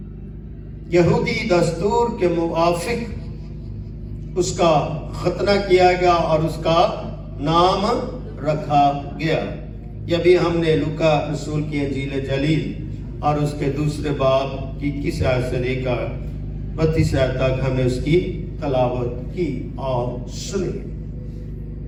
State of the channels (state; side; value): identical; both; correlation 1.00